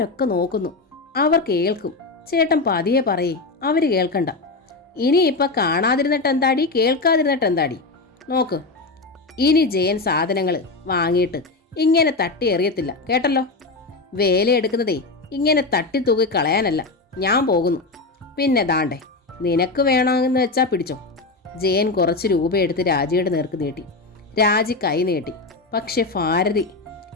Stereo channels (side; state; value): right; quieter; 3.5 dB